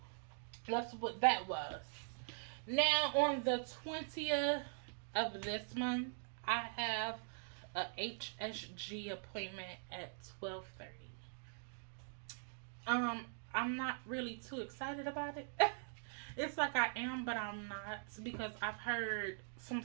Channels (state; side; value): silent; left; digital silence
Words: that's what that was. Now on the 20th of this month, I have a HSG appointment at 12:30. I'm not really too excited about it. It's like I am, but I'm not, because I've heard some